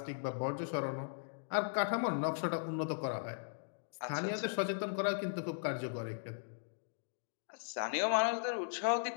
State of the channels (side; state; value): right; silent; digital silence